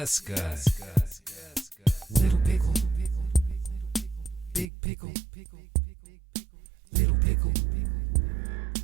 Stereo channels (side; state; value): left; drops out; at 4.7 s